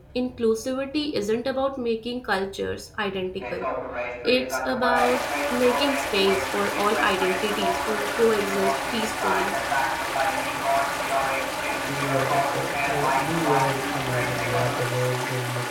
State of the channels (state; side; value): identical; both; correlation 1.00